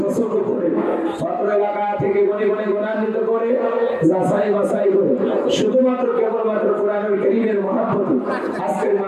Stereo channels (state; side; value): identical; both; correlation 1.00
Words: পছন্দ করে, ছাত্র এলাকা থেকে গণে গণে গুণান্বিত করে, যাচাই বাছাই করে, শুধুমাত্র কেবলমাত্র কোরআনুল কারীমের মহব্বতে আজকের